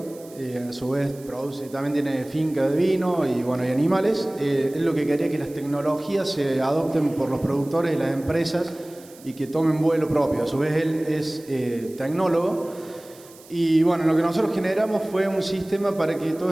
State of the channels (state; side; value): noise; right; hiss, 23 dB below the sound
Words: a su vez produce, también tiene finca de vino y, bueno, y animales. Él lo que quería que las tecnologías se adopten por los productores y las empresas y que tomen vuelo propio. A su vez él es tecnólogo. Y bueno, lo que nosotros generamos fue un sistema para que